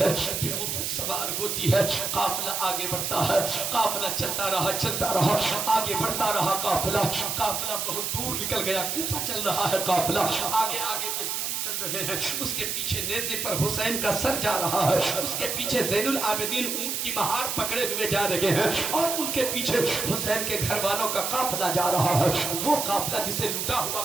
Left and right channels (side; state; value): right; noise; hiss, 2 dB below the sound